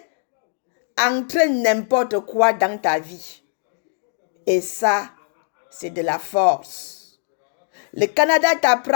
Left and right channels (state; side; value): silent; right; digital silence